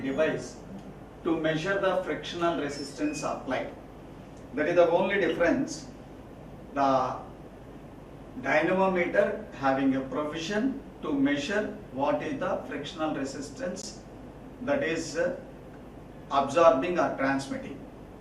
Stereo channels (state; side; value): identical; both; correlation 1.00